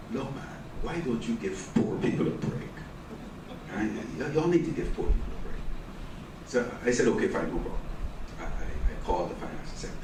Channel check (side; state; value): both; identical; correlation 1.00